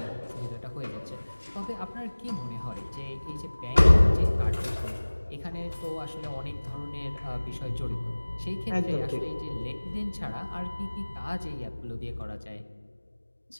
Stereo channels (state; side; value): inverted; both; correlation -1.00